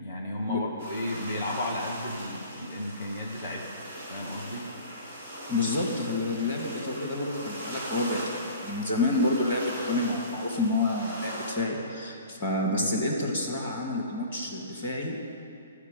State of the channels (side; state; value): both; inverted; correlation -0.42